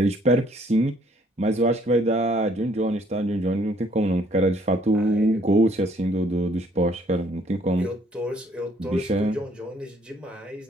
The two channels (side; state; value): both; normal; correlation 0.63